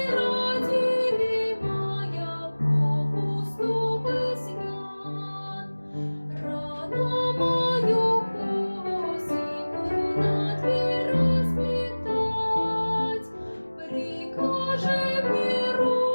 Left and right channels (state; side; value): inverted; both; correlation -1.00